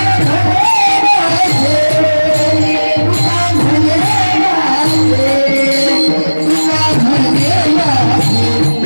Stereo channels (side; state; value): both; inverted; correlation -1.00